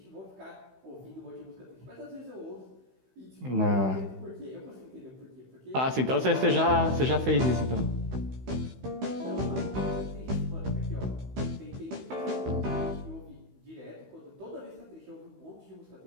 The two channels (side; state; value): left; late; 16 ms